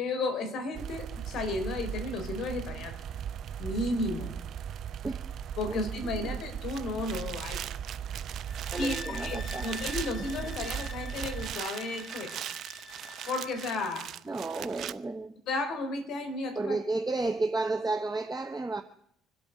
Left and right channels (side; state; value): both; normal; correlation 0.64